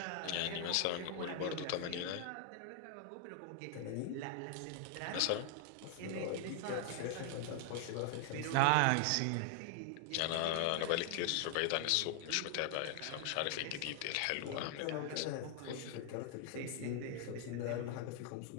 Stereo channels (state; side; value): different; both; correlation 0.00